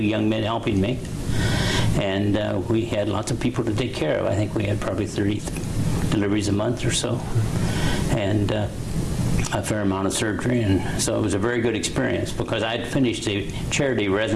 men helping me, and we had lots of people to take care of. I think we had probably 30 deliveries a month or so, and a fair amount of surgery, and so it was a very good experience because I had finished a charity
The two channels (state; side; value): identical; both; correlation 1.00